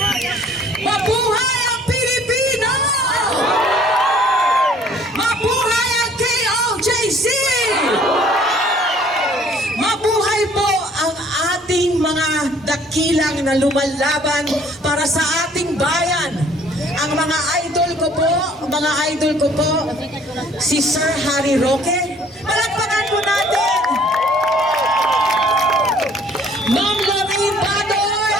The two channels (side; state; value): both; normal; correlation 0.57